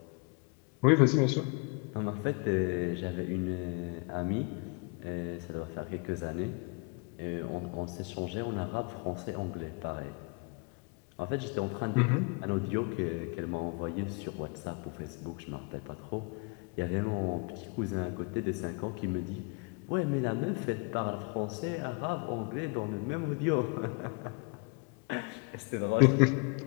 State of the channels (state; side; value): quieter; right; 32.8 dB